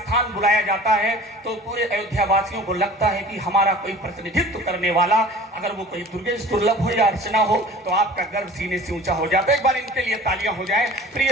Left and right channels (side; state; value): both; normal; correlation 0.43